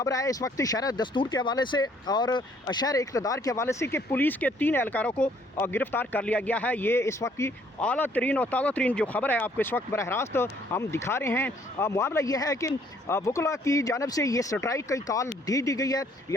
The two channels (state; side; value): normal; both; correlation 0.63